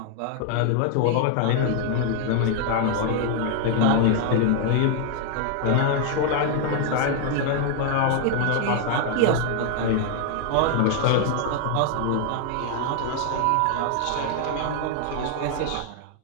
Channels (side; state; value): both; different; correlation 0.00